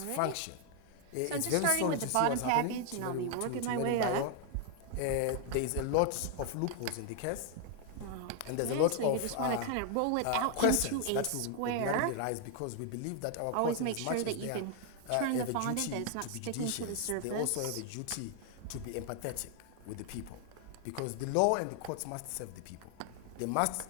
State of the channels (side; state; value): both; different; correlation 0.00